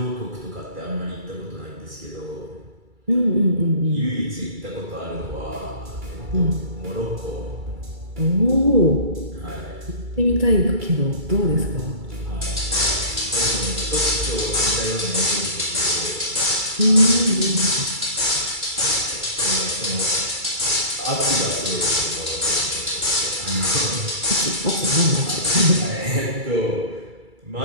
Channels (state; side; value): late; left; 2.3 ms